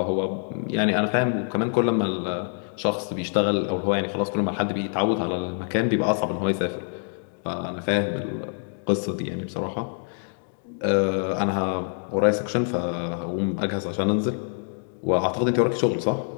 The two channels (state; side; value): silent; right; digital silence